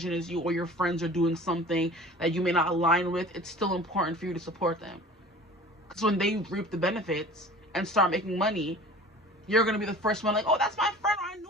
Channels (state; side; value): normal; both; correlation 0.43